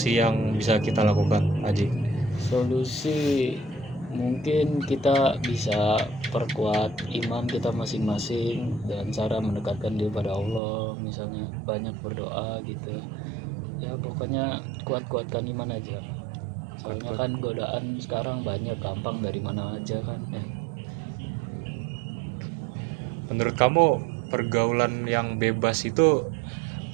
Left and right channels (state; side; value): drops out; left; at 10.6 s